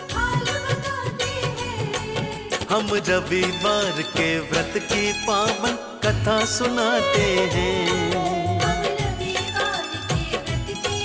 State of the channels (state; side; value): identical; both; correlation 1.00